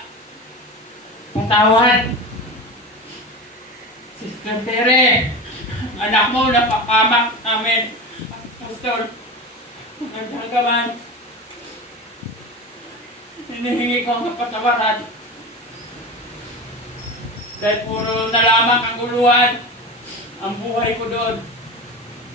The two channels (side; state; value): both; normal; correlation 0.27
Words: patawad Sister Tere, anak mo napapamak namin. Pastor, magdagaman, hinihingi ko ang kapatawaran. Dahil puro na lamang kaguluhan ang buhay ko doon.